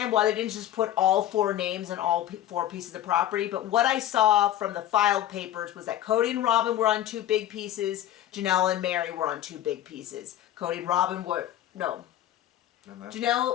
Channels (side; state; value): right; quieter; 12.4 dB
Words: why they didn't just put all 4 names and all 4 pieces of property, but what I saw from the filed papers was that Cody and Robin were on 2 big pieces, Janelle and Mary were on 2 big pieces. Cody and Robin were, no,